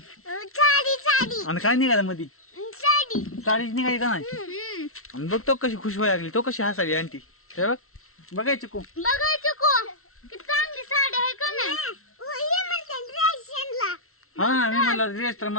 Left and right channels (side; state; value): right; late; 0.63 ms